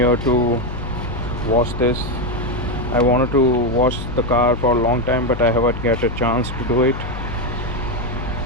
to wash this. I wanted to wash the car for a long time, but I haven't get a chance to do it.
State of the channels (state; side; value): noise; left; hum, 8 dB below the sound